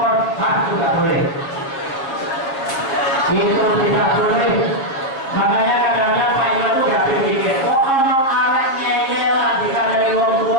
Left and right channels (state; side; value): late; right; 7.4 ms